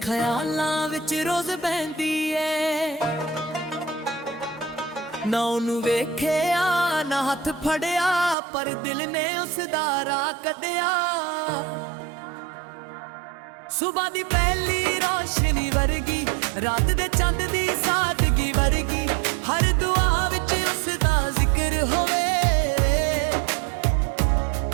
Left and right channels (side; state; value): left; drops out; at 8.3 s